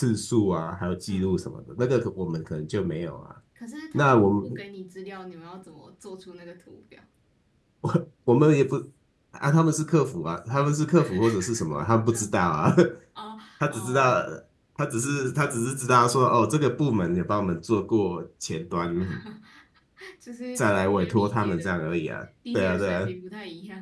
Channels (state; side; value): identical; both; correlation 1.00